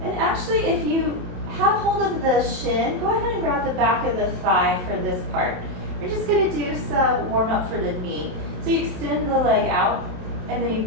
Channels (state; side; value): late; left; 27 ms